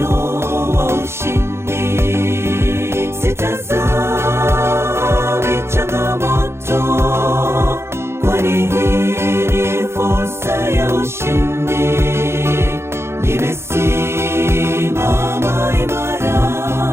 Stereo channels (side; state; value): left; late; 0.12 ms